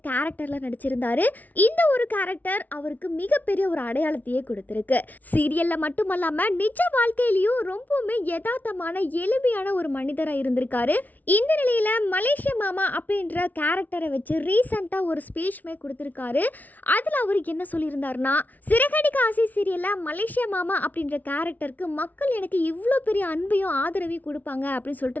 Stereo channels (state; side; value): late; right; 0.079 ms